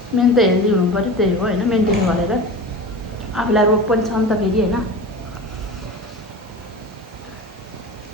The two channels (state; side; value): normal; both; correlation 0.31